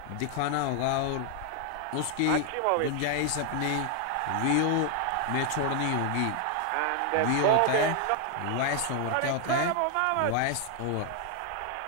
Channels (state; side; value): different; both; correlation 0.00